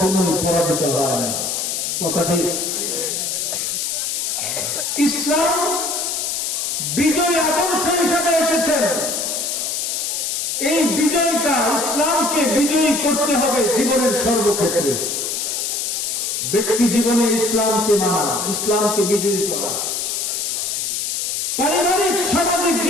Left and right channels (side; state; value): left; noise; hiss, 1 dB below the sound